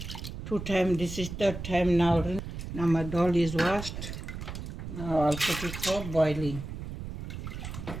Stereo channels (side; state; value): right; noise; rumble, 8 dB below the sound